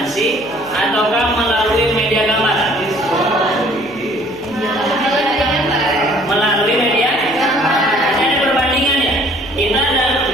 ataukah melalui media gambar. Melalui media ada perbandingan ya. Kita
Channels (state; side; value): noise; left; hum, 25 dB below the sound